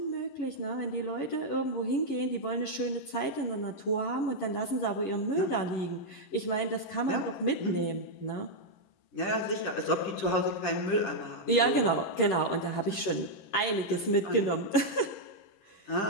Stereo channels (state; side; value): late; right; 11 ms